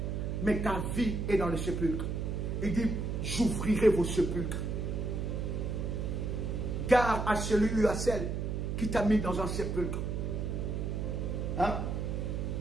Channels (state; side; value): noise; right; hum, 2 dB below the sound